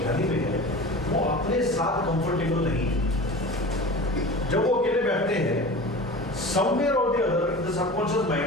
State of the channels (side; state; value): both; normal; correlation 0.35